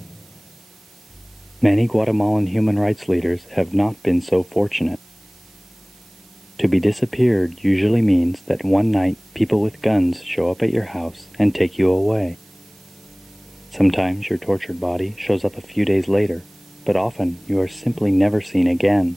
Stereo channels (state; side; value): noise; right; hiss, 30 dB below the sound